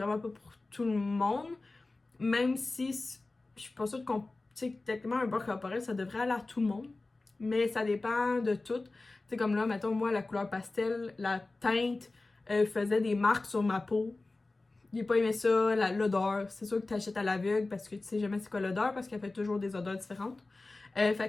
pas pour tout le monde. Même si je suis pas sûre qu'on. Tu sais, techniquement, un beurre corporel, ça devrait aller à tout le monde. Mais ça dépend de tout. Tu sais, comme là, mettons, moi, la couleur pastel, la teinte faisait des marques sur ma peau. J'ai pas aimé ça, l'odeur. C'est sûr que tu achètes à l'aveugle parce que tu sais jamais c'est quoi l'odeur parce qu'elle fait toujours des odeurs différentes.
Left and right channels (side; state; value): right; quieter; 3.3 dB